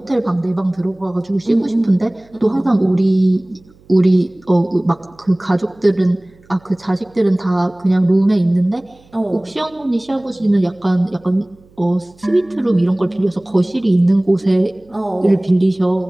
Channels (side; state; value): right; noise; hum, 29 dB below the sound